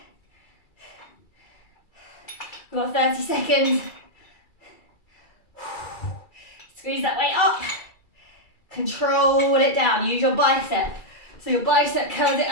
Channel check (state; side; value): late; right; 2.3 ms